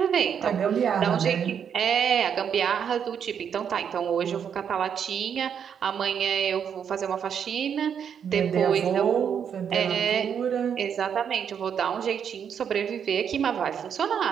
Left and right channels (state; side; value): quieter; left; 7.9 dB